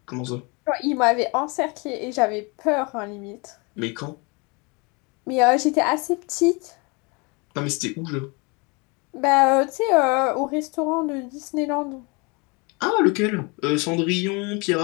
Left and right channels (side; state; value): right; quieter; 29.5 dB